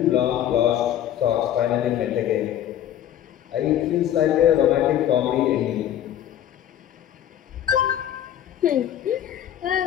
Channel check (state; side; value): quieter; right; 11.0 dB